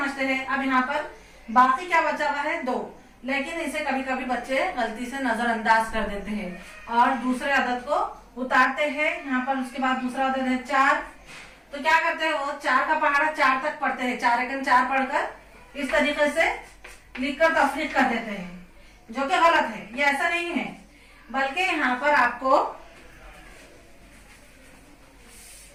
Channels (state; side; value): identical; both; correlation 1.00